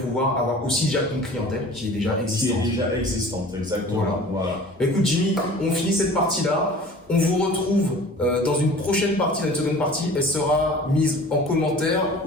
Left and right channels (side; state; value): both; normal; correlation 0.44